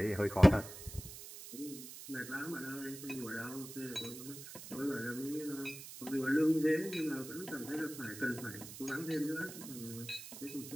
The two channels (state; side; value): noise; right; hiss, 12 dB below the sound